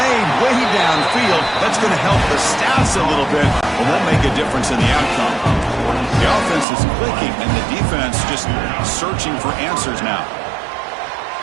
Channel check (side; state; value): left; drops out; at 6.7 s